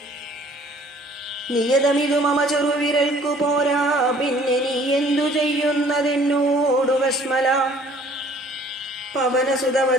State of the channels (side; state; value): both; normal; correlation 0.55